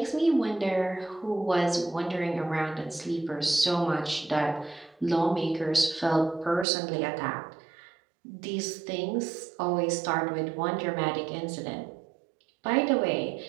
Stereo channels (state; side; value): drops out; left; at 6.7 s